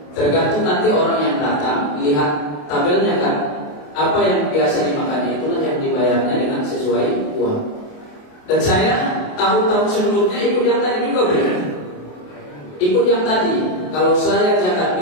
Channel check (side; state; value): right; late; 28 ms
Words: Tergantung nanti orang yang datang lihat tabelnya kan, apa yang biasa dimakannya itulah yang dibayarnya dengan sesuai uang. Dan saya tahun-tahun sebelumnya ikut yang tadi juga benar. Ikut yang tadi. Kalau saya zakat